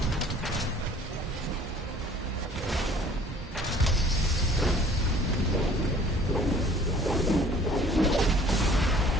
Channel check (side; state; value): both; normal; correlation 0.53